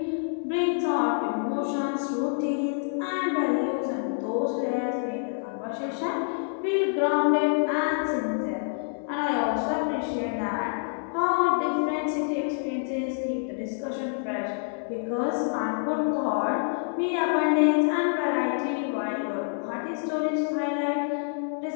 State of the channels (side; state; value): right; silent; digital silence